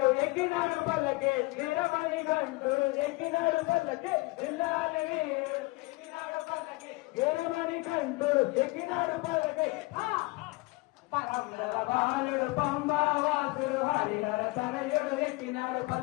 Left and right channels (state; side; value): quieter; right; 24.1 dB